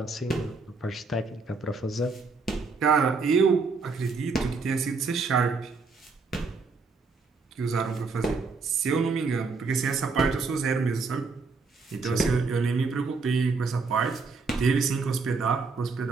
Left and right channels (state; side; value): quieter; left; 4.4 dB